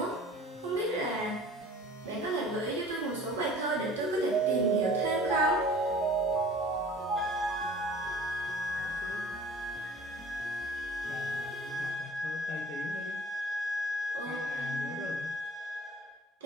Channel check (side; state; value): both; normal; correlation 0.47